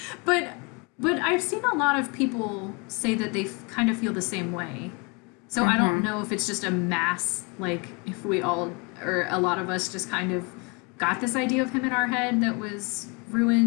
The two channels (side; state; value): right; quieter; 30.9 dB